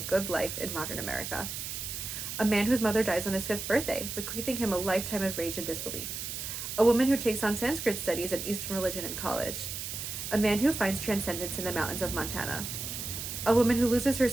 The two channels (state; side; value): noise; right; hiss, 6 dB below the sound